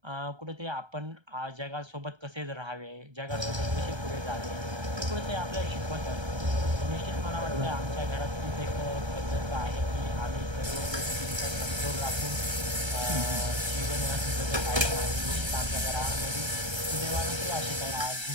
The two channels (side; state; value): left; late; 1.3 ms